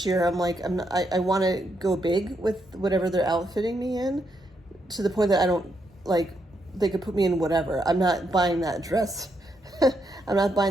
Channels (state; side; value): normal; both; correlation 0.79